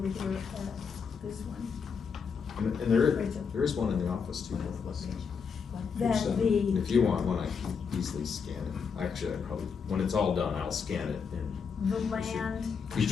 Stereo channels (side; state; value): right; quieter; 6.0 dB